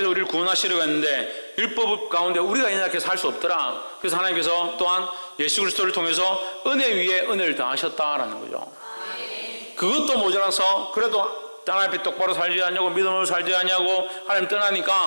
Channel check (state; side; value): inverted; both; correlation -1.00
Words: 우리를 구원하시려고 했는데 율법 가운데 우리가 이렇게 살 수 없더라. 그래서 하나님께서 또한 예수 그리스도를 통해서 은혜 위에 은혜를 더하셨다라는 거죠. 그것도 모자라서 그래도 하나님 앞에 똑바로 살지 않냐고 믿음으로 살지 않냐고 하나님